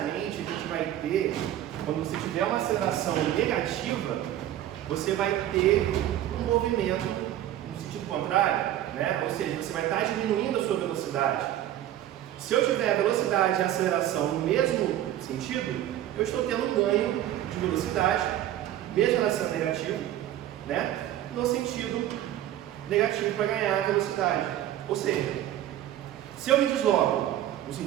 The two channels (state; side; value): quieter; left; 12.5 dB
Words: a gente vai ter, quando você tiver uma aceleração negativa, você vai ter um movimento no sentido contrário, né? Ou seja, você vai estar diminuindo a sua velocidade. Se eu tiver a velocidade e a aceleração no mesmo sentido, eu estou tendo um ganho de velocidade, mesmo ela sendo negativa, né? No sentido negativo para ganhar a velocidade. Ou seja, se eu me desloco no